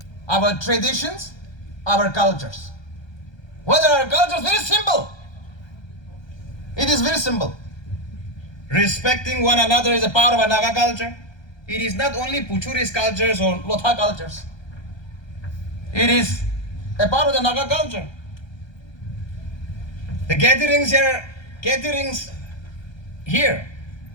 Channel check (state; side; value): late; right; 1.3 ms